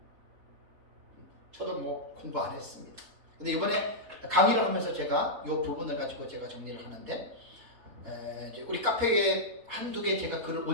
저도 뭐 공부 안 했습니다. 근데 이번에 강의를 하면서 제가 이 부분을 가지고 제가 정리를 하는데 이제 우리 카페에 한두 개 제가 글을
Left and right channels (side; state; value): left; late; 4.2 ms